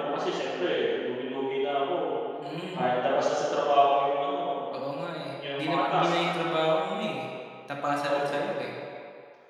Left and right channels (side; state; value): both; identical; correlation 1.00